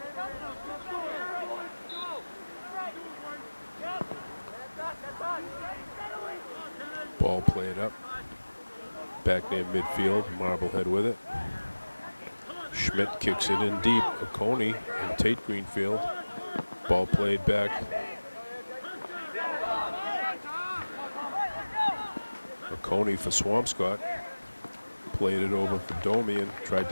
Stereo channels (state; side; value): inverted; both; correlation -1.00